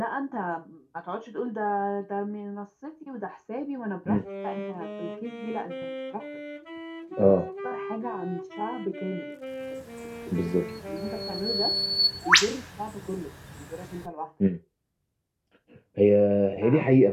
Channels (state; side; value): identical; both; correlation 1.00